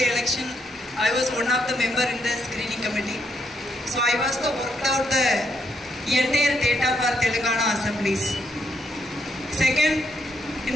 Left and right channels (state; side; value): normal; both; correlation 0.76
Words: election, I was one of the member in the screening committee. So I was worked out the entire data for Telangana assemblies. Second, in